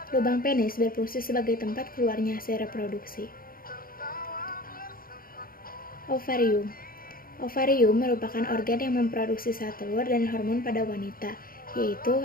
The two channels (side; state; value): right; late; 0.42 ms